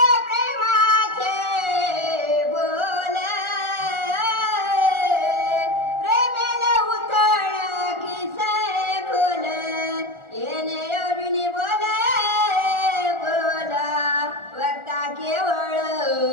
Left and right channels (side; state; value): left; late; 1.4 ms